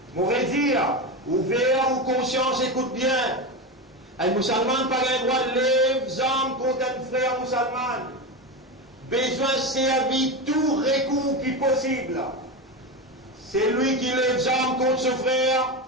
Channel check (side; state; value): both; normal; correlation 0.18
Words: On va dire, ouvert ou conscience, écoute bien. Un musulman n'a pas le droit de lever les armes contre un frère musulman. Besoin de servir tout recours qui est possible. C'est lui qui lève les armes contre son frère.